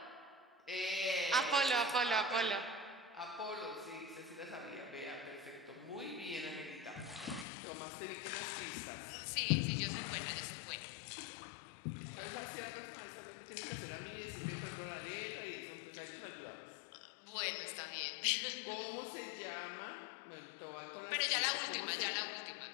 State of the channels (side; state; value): right; drops out; at 7.5 s